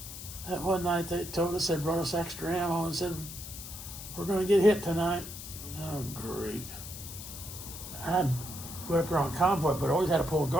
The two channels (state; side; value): noise; left; hiss, 11 dB below the sound